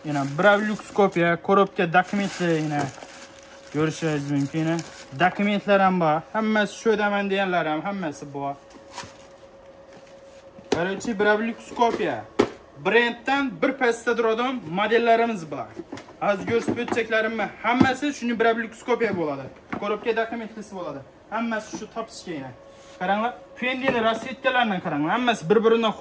yana Brablux kopiya, korobka dokumentlar yana ko'rishingiz mumkin. Dokumentlar ham bor. Hammasi shu daman deganlar ham hammasi bor. Birinchi Brablux kopiya. Brenddan bir pastda turadigan modellarimiz bor. Az ko'rsatib o'tchaklarimni hammasi shuni Brablux kopiya bo'ladi. Korobka dokumentlisi bo'ladi. Hammasi shu topishga yana. Qaranglar, Fendining rasvetkalarini qaranglar. Hammasi bir-biridan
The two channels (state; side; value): identical; both; correlation 1.00